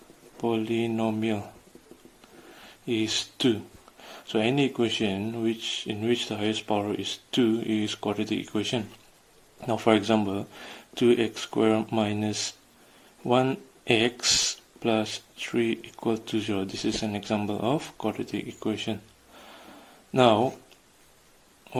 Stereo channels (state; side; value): identical; both; correlation 1.00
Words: polynomial is 2. So any equation in which the highest power is 2 is quadratic equation. Now for example, 2x squared minus 1x plus 3 equal to 0. This is an example of quadratic equation. Now